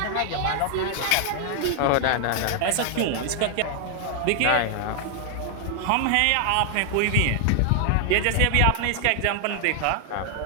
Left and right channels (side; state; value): both; different; correlation 0.00